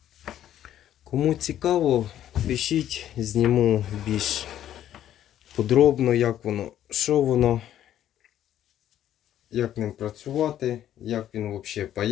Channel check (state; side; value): quieter; right; 11.4 dB